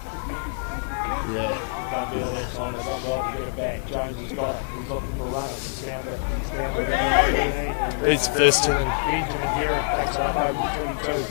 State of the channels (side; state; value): right; silent; digital silence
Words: Done better that time. They've got well to get it back. Jones has got it. He's looking for runners. He's found the big number 13, and Benjamin Heron takes it up over the 22.